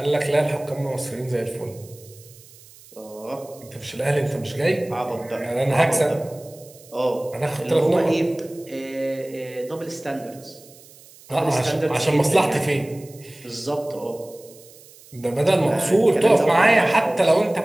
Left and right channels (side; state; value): right; noise; hiss, 23 dB below the sound